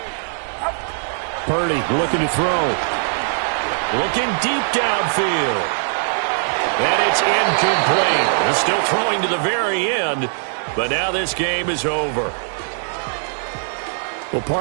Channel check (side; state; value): left; silent; 65 dB below the other